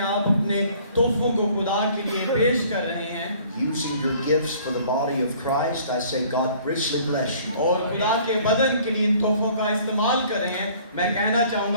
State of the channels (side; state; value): both; inverted; correlation -0.54